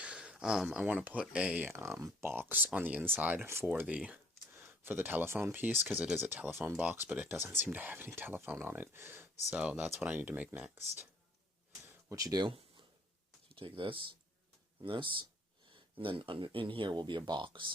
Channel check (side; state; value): both; normal; correlation 0.59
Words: I want to put a box on the inside for the telephone piece, because it is a telephone box, but it doesn't seem to have any telephone on it. So that's what I need to make next. What you do, you take this, and then in here will be a